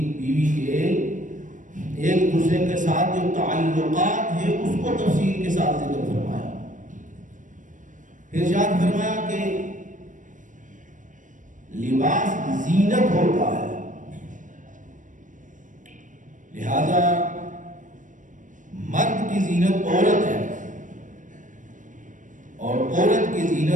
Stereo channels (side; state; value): left; late; 0.37 ms